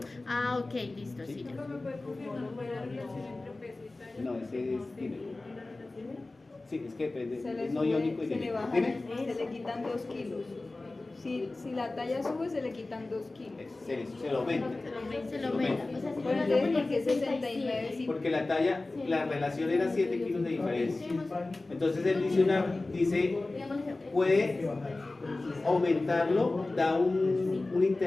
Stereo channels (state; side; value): quieter; right; 3.1 dB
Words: Ah, ok, listo, sí. ya. No, ese es. Dime. Sí, es que depende. Se le Es no sube, iónico y se le dime. baja, Dime. se le quitan 2 kilos. Si la talla sube, se le quitan 2 kilos. Se lo aumenta. Se lo aumenta. O sea, si Pues llega a entonces, ¿por qué 69? 69? Sí. Porque la talla, la relación era 7 kilos de diferencia. Entonces él dice, puede aumentarlo, da un